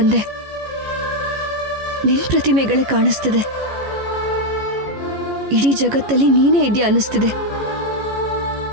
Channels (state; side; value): late; left; 14 ms